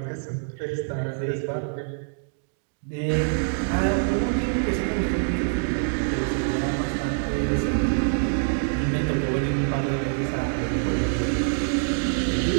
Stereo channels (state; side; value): silent; left; digital silence